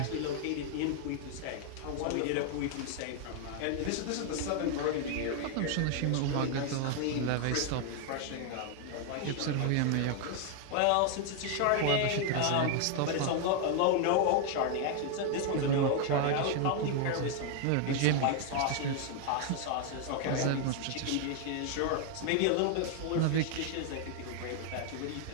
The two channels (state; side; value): different; both; correlation 0.00